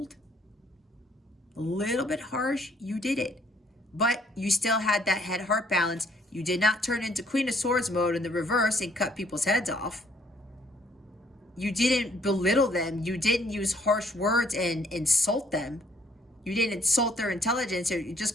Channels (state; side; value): normal; both; correlation 0.64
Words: a little bit harsh, you did it. But you still had that head-heart balance. You did not turn into Queen of Swords mode in the reverse and cut people's heads off. You didn't belittle them. You didn't use harsh words and insult them. You didn't insult their intelligence or you